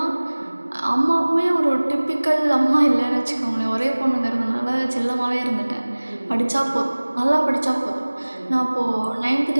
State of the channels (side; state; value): both; inverted; correlation -1.00